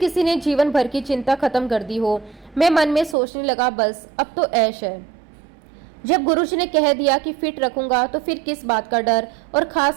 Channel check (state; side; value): drops out; left; at 3.2 s